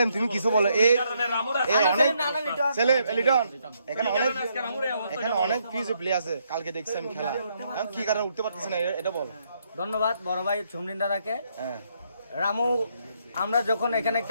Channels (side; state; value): both; inverted; correlation -0.74